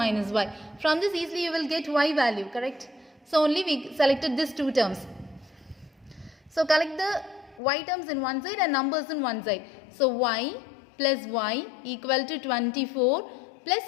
y. From this easily you will get y value, correct? So only we selected these 2 terms. So collect the y terms in one side and numbers in one side. So y plus y equal to 24 plus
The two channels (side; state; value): right; drops out; at 7.6 s